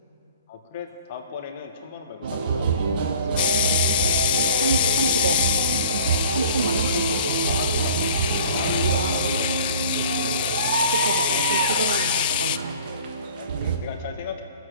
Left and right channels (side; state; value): both; inverted; correlation -0.46